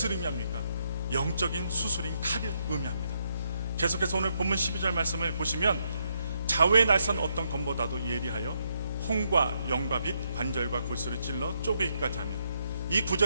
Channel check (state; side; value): inverted; both; correlation -0.77